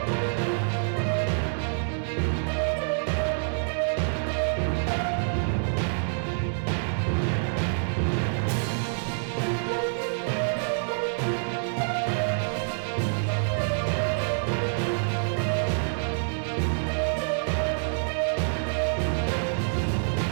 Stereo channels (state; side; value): silent; left; 58 dB below the other